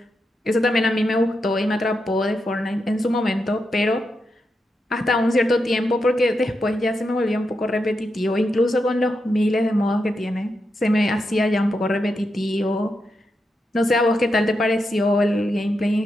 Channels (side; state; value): both; normal; correlation 0.86